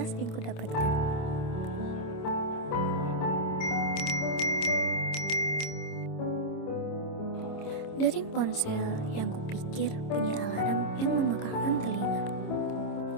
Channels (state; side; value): late; right; 26 ms